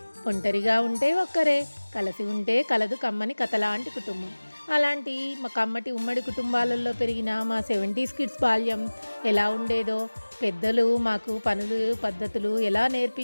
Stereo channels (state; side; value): inverted; both; correlation -1.00